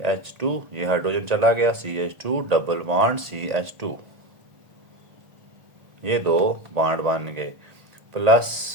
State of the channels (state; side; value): late; left; 1.8 ms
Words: ये हाइड्रोजन चला गया, CH2 डबल बॉन्ड CH2, ये दो बॉन्ड बन गए,